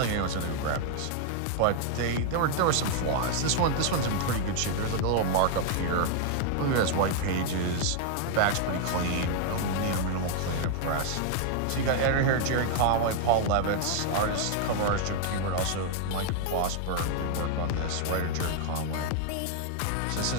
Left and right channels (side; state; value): both; different; correlation 0.00